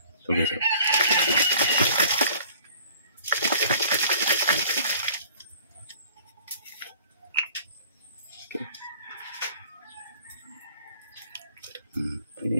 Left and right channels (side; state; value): both; inverted; correlation -0.51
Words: Ito guys, oh.